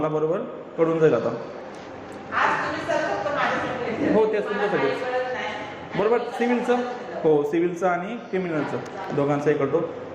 बरोबर कळून जाईल आता. हो तेच तुमच्यासाठी बरोबर सिव्हिलचं हो सिव्हिलचं आणि क्रिमिनलचं दोघांचं हे करतो.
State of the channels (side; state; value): both; identical; correlation 1.00